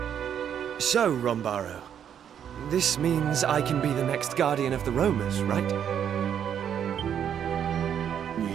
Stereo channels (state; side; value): quieter; left; 8.9 dB